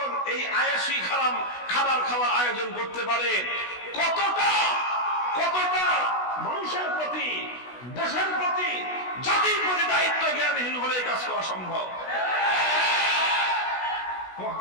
এই আয়েশি খাবার খাওয়ার আয়োজন করতে পারে। কতটা কতটা মানুষের প্রতি, দেশের প্রতি, জাতির প্রতি দায়িত্ব জ্ঞানহীন হলে কাজ করা সম্ভব।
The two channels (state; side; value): late; right; 16 ms